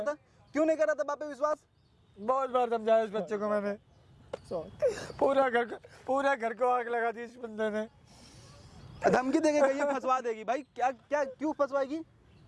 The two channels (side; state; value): both; identical; correlation 1.00